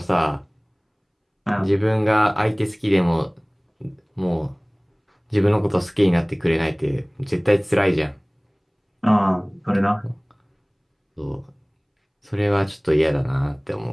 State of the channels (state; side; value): identical; both; correlation 1.00